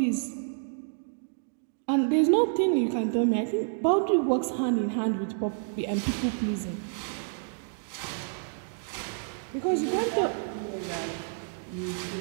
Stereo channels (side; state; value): left; silent; digital silence